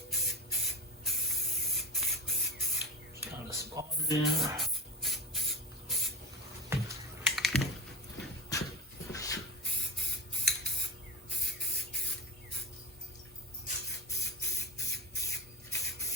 Kind of spot it in.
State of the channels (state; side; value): normal; both; correlation 0.25